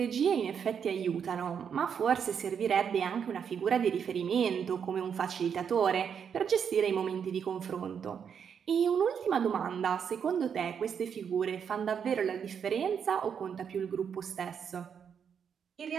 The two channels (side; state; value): left; quieter; 7.4 dB